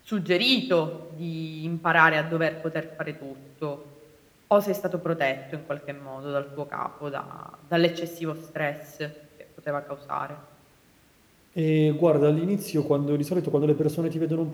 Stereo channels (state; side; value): identical; both; correlation 1.00